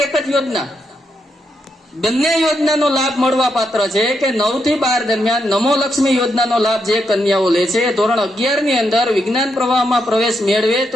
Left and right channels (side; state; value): both; normal; correlation 0.81